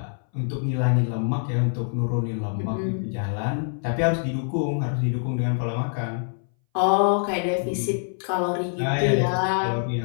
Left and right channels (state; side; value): silent; right; 60 dB below the other